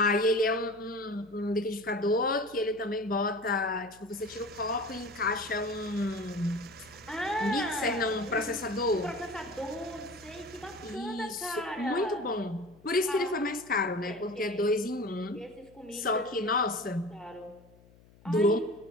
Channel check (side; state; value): left; noise; hum, 26 dB below the sound